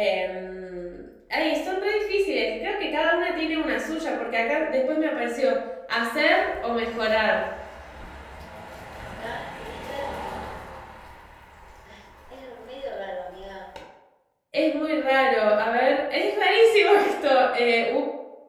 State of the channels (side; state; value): both; identical; correlation 1.00